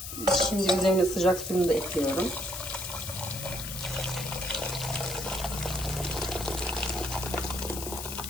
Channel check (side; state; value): left; noise; hiss, 7 dB below the sound